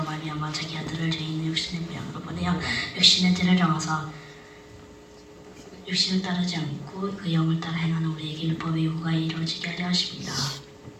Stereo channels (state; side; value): identical; both; correlation 1.00